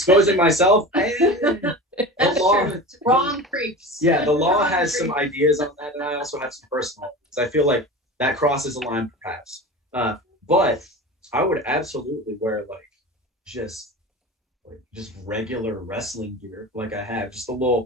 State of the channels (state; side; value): normal; both; correlation 0.32